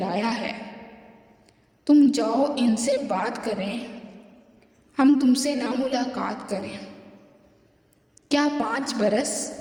है। तुम जाओ इनसे बात करें, हम तुमसे ना मुलाकात करें। क्या 5 बरस,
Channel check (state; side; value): identical; both; correlation 1.00